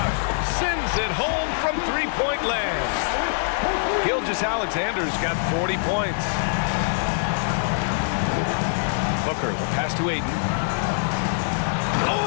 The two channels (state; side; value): silent; right; digital silence